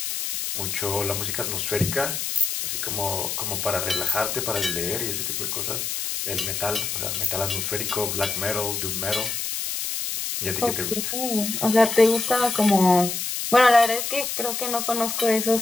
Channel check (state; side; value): noise; left; hiss, 3 dB below the sound